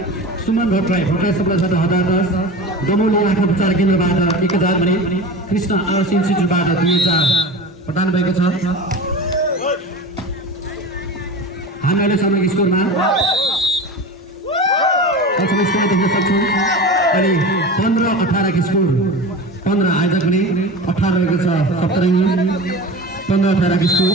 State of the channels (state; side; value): normal; both; correlation 0.31